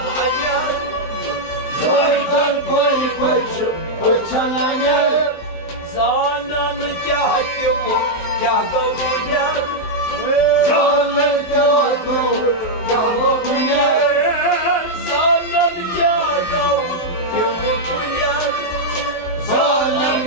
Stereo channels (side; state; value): right; late; 23 ms